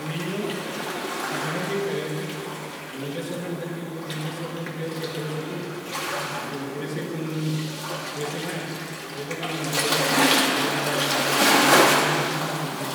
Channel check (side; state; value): both; identical; correlation 1.00